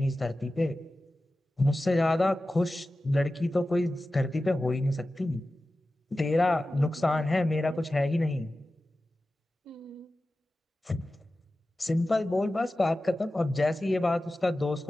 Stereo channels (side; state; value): both; normal; correlation 0.95